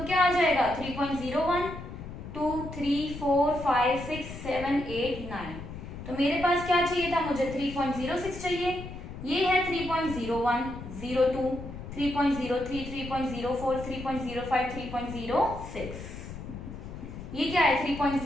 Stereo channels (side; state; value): left; noise; rumble, 10 dB below the sound